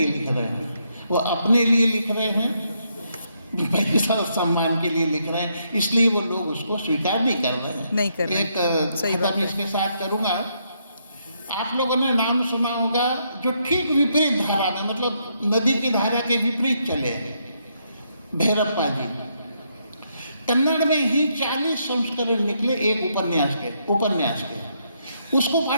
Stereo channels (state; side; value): inverted; both; correlation -0.76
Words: लिख रहे हैं, वो अपने लिए लिख रहे हैं, पैसा और सम्मान के लिए लिख रहे हैं, इसलिए वो लोग उसको स्वीकार नहीं कर रहे हैं। नहीं कर रहे। एक खत्म इसके साथ करूँगा। आप लोगों ने नाम सुना होगा जो ठीक विपरीत धारा में, मतलब नदी की धारा के विपरीत चले, भैरप्पा जी। कन्नड़ में ही 40 संस्करण निकले एक उपन्यास के। उसको